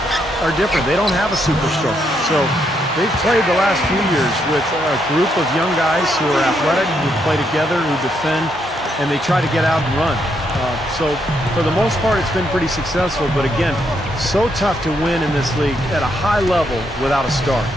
are different. They don't have a superstar. So they've played the last few years with a group of young guys who are athletic, who play together, who defend, and they try to get out and run. So for the most part, it's been pretty successful. But again, so tough to win in this league at a high level without a star.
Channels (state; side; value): normal; both; correlation 0.77